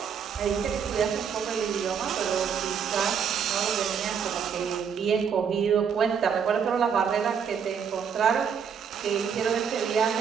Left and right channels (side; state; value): left; quieter; 7.1 dB